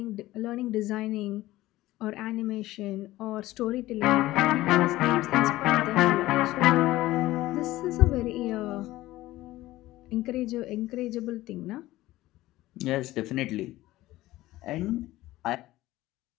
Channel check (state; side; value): quieter; right; 16.8 dB